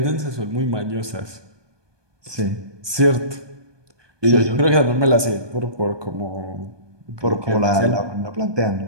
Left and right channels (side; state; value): left; late; 1.2 ms